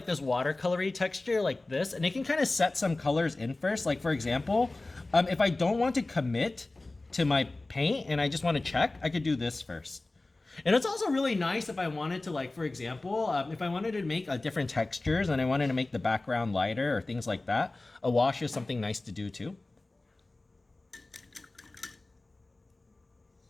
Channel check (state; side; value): quieter; right; 3.0 dB